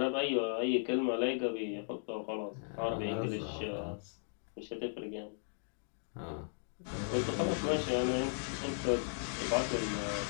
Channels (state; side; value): silent; right; digital silence